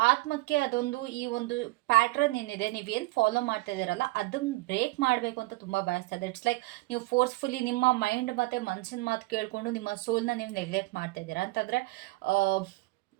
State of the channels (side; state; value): left; quieter; 22.0 dB